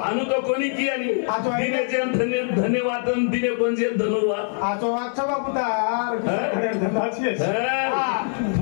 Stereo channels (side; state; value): right; silent; 62 dB below the other